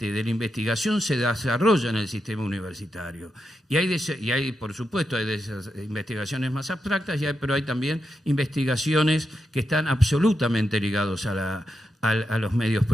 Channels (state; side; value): normal; both; correlation 0.86